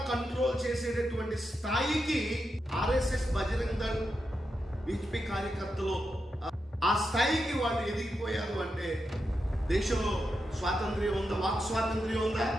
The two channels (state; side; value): normal; both; correlation 0.87